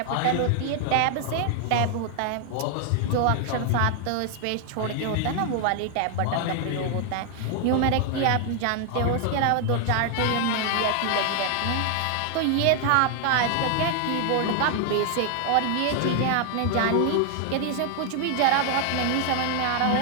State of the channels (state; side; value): different; both; correlation 0.00